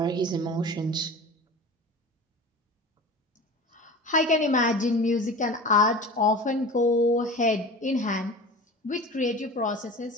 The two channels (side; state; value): both; normal; correlation 0.35